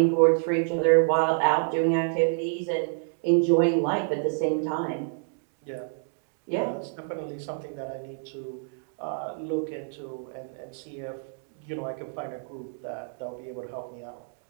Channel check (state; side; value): silent; left; digital silence